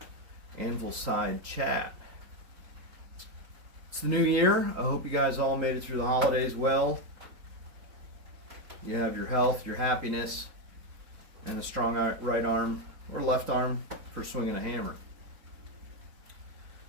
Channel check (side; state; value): left; late; 3.9 ms